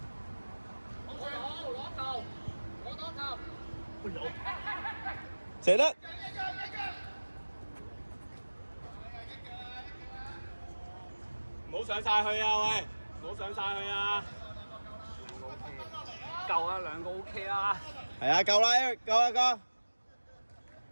射得！唔好上晒去啊喂！唔好上晒去啊！夠啊，兩個 OK 啦。係啊，夠啦 ，Eric，夠啦，夠。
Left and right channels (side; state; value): both; inverted; correlation -1.00